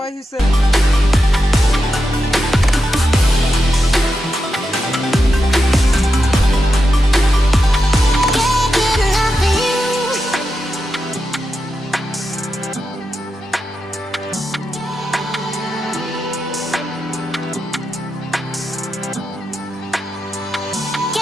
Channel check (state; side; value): normal; both; correlation 0.88